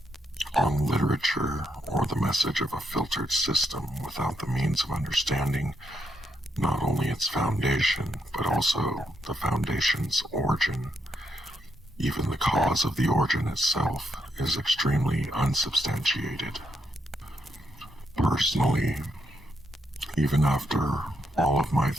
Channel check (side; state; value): both; normal; correlation 0.79